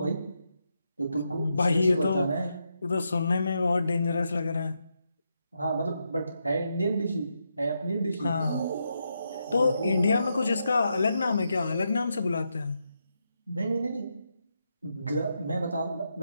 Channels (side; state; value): both; inverted; correlation -0.83